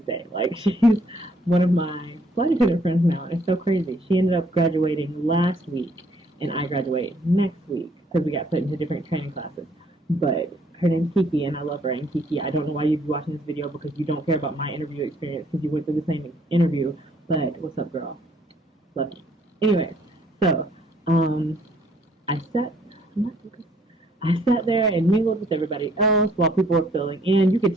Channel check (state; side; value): normal; both; correlation 0.64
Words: day. Like, she's one of my flight attendant friends now, and it's so crazy. She ended up graduating last week, and I graduate next week because we got put into different training classes. But her name's Kiki, and I love her. And Kiki, I don't know why you'd be watching this video because you don't care about my interview experience because you went through the same interview. But what's up, girl? Love you. Anyway, so I sat there and mingled with everybody else while people were filling in. You